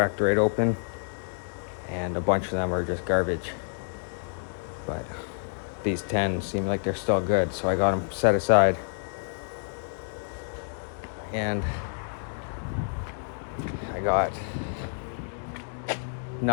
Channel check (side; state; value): right; silent; digital silence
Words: right open, and a bunch of them are just garbage. But these 10 seem like they're still good, so I got them set aside. And I got